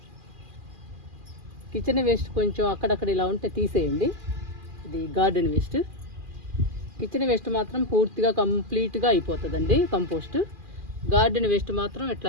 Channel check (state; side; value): late; left; 2.4 ms